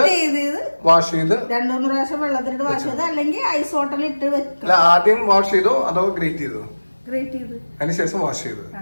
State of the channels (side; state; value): both; inverted; correlation -1.00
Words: വാഷ് ചെയ്ത് 2-3 പ്രാവശ്യം വെള്ളത്തിലിട്ട് വാഷ് ചെയ്ത്, അല്ലെങ്കിൽ ഐസ് വാട്ടറിൽ ഇട്ട് വെക്കുക. ആദ്യം വാഷ് ചെയ്തോ അതോ ഗ്രേറ്റ് ചെയ്തോ? ഗ്രേറ്റ് ചെയ്ത് അതിനുശേഷം വാഷ് ചെയ്തു.